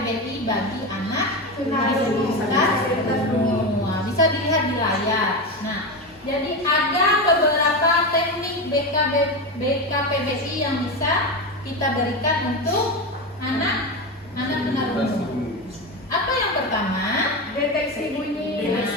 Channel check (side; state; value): both; normal; correlation 0.18